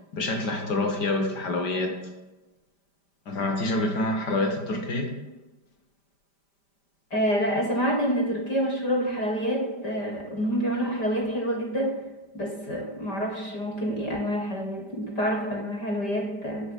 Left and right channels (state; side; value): late; right; 5.1 ms